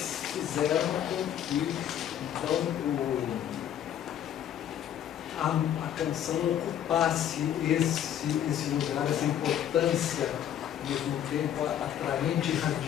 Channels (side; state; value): right; quieter; 10.3 dB